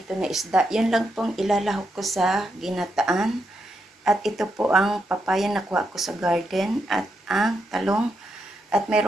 na isda. Yan lang pong ilalahok ko sa ginataan. At ito po ang papaya na kuha ko sa garden. At ang talong. At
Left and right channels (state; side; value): normal; both; correlation 0.82